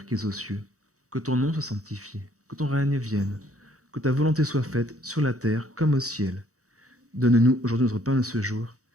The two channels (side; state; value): left; late; 0.65 ms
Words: qui es aux cieux, que ton nom soit sanctifié, que ton règne vienne, que ta volonté soit faite sur la terre comme au ciel. Donne-nous aujourd'hui notre pain de ce jour.